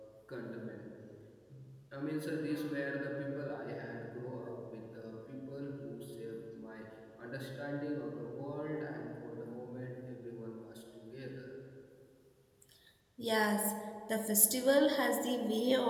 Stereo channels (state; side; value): identical; both; correlation 1.00